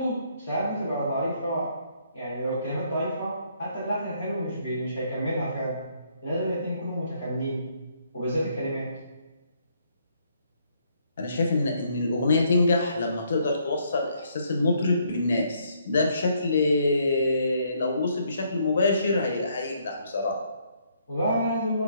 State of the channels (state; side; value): inverted; both; correlation -0.70